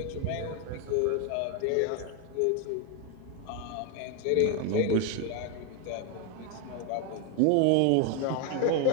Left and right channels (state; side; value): different; both; correlation 0.01